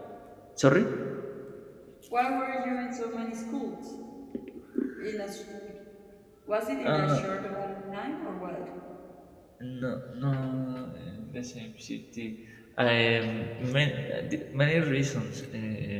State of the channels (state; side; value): identical; both; correlation 1.00